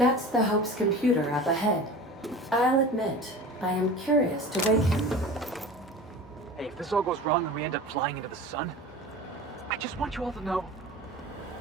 the Hope's computer up ahead. I'll admit, I am curious to wake him. Hey, if this all goes wrong and we end up flying into the sun, I just want you all to know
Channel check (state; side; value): normal; both; correlation 0.36